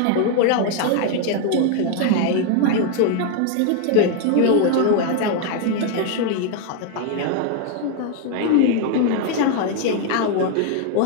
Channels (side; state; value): both; different; correlation 0.01